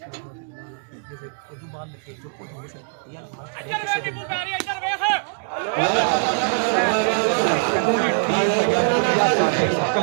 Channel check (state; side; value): silent; left; 64 dB below the other